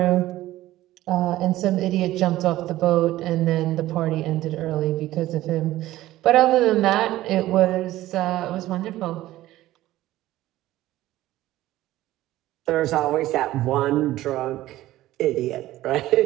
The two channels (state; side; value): quieter; left; 15.5 dB